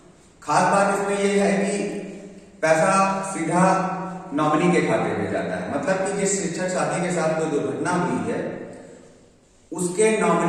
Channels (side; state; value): both; identical; correlation 1.00